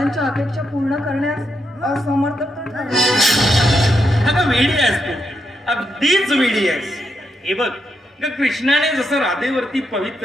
अपेक्षा पूर्ण करण्यास असमर्थ. अगं वेडी आहेस तू, अगदीच वेडी आहेस. हे बघ कृष्णाने जसं राधेवरती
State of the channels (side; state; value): both; normal; correlation 0.81